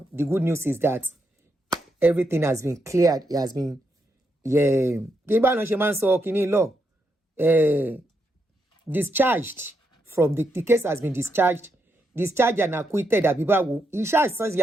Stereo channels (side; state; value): both; normal; correlation 0.81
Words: the good news is that everything has been cleared. It has been, discharged from the case has been discharged and acquitted. He